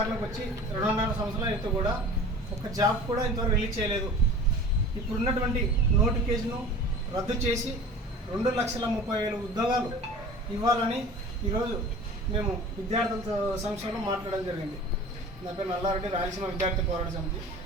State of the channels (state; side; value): normal; both; correlation 0.41